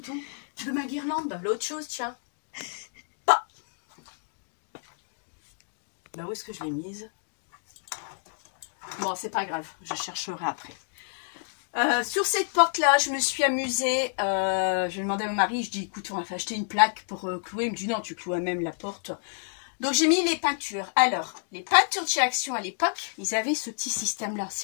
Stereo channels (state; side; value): silent; right; digital silence